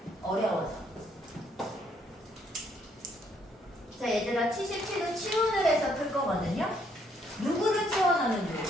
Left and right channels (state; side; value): normal; both; correlation 0.70